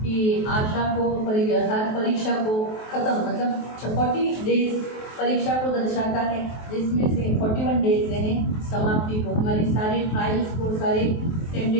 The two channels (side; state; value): right; late; 23 ms